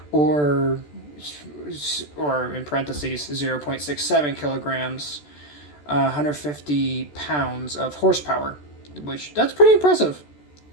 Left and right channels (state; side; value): late; right; 14 ms